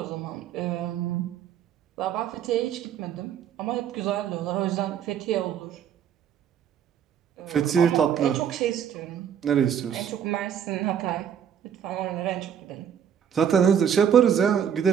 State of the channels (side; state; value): left; quieter; 8.6 dB